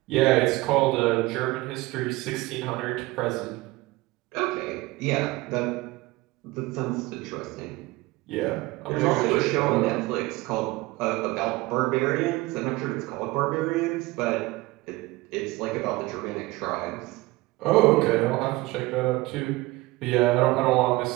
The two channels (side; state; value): left; quieter; 20.8 dB